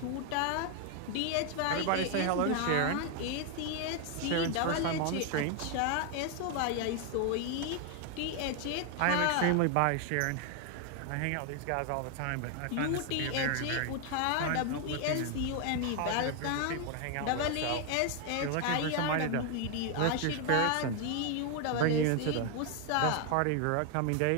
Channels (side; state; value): both; different; correlation 0.01